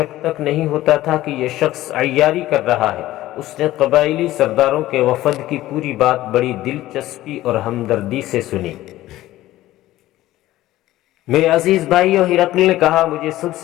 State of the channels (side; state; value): right; quieter; 15.6 dB